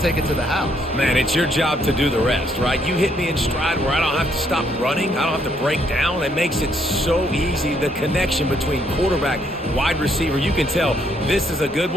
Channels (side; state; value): both; normal; correlation 0.71